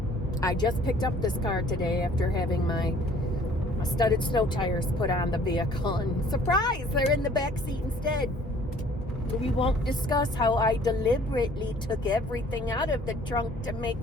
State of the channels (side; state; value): both; normal; correlation 0.55